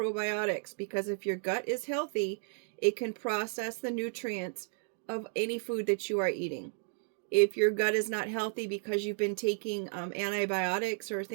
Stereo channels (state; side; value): silent; left; 56 dB below the other